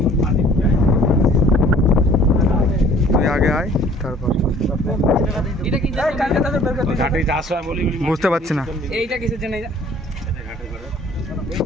তুই আগে আয় তারপর। বুঝতে পারছি না,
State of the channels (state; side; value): normal; both; correlation 0.54